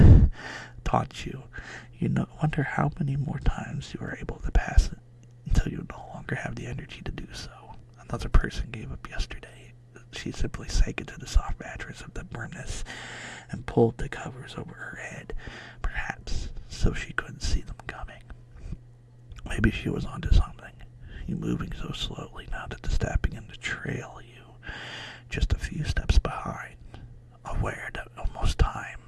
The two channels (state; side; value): identical; both; correlation 1.00